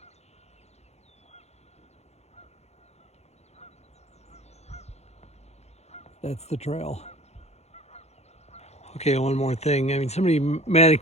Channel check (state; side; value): late; right; 0.31 ms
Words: That's the trail. Okay, one more thing. I mean, somebody